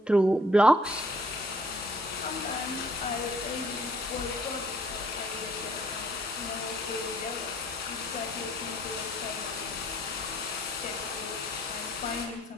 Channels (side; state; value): both; normal; correlation 0.61